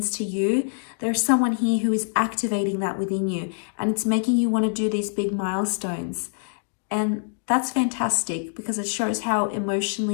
to you, there's someone here who is activating that within you, and it's making you want to do these big milestones. And that's fantastic, because it shows how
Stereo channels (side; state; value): right; silent; digital silence